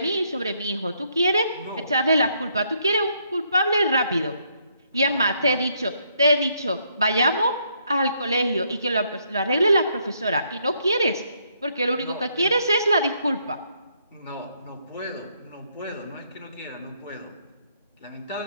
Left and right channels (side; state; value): both; inverted; correlation -0.73